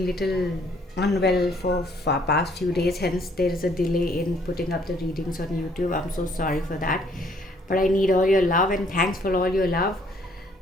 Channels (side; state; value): both; normal; correlation 0.64